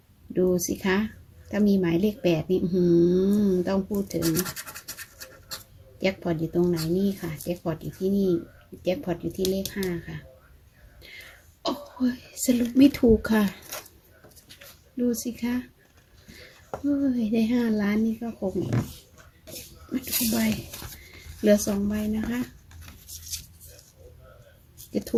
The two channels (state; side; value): identical; both; correlation 1.00